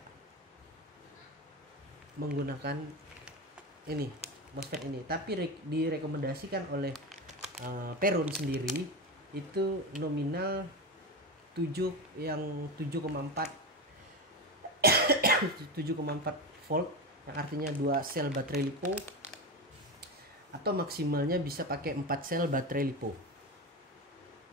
menggunakan ini MOSFET ini, tapi direkomendasikan oleh Peron sendiri itu nominal 7,4 volt, yang artinya 2 sel baterai LiPo, atau maksimalnya bisa pakai 4 sel baterai LiPo.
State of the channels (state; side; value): normal; both; correlation 0.20